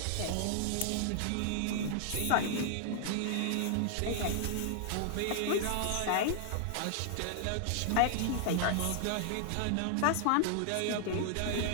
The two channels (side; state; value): both; different; correlation 0.00